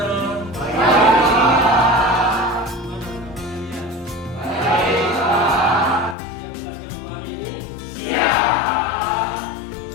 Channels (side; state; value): right; drops out; at 6.2 s